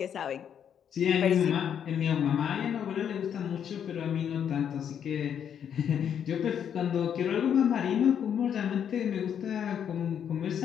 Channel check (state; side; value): quieter; right; 8.6 dB